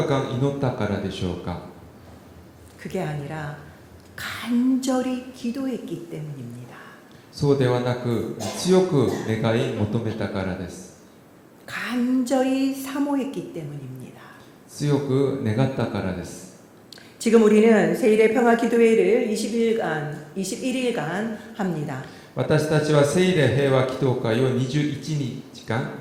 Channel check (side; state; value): both; identical; correlation 1.00